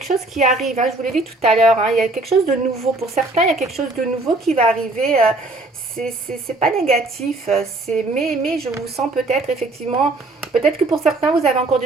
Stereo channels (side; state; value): left; quieter; 3.0 dB